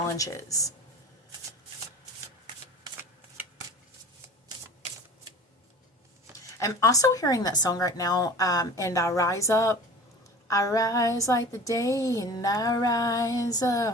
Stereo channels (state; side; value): normal; both; correlation 0.40